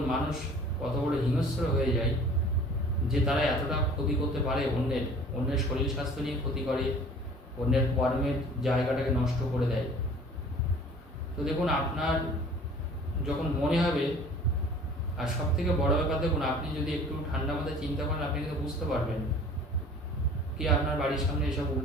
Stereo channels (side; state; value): both; normal; correlation 0.48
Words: মানুষ কত বড় হিংস্র হয়ে যায় যে তারা এতটা ক্ষতি করতে পারে। অন্যের শরীর স্বাস্থ্য নিয়ে ক্ষতি করে, অন্যের কর্মের জায়গাটাকে নষ্ট করে দেয়। তো দেখুন, আপনার যখন মনে হবে, আর সব থেকে বড় ব্যাপার দেখুন, আপনি যদি একটু ঠান্ডা মাথায় চিন্তা করেন, আপনি কিন্তু বুঝতে পারবেন কি আপনার বাড়ির সামনে এসব